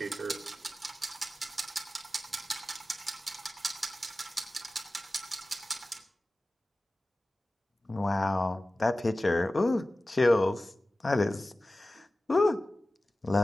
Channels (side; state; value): both; normal; correlation 0.96